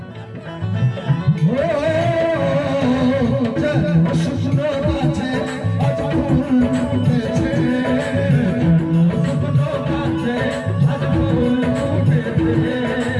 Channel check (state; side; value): identical; both; correlation 1.00